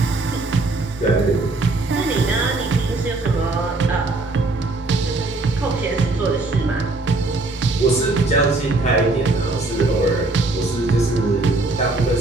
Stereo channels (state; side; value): quieter; left; 3.1 dB